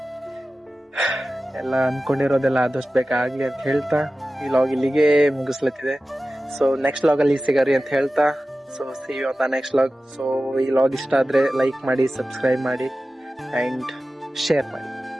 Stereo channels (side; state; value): both; normal; correlation 0.95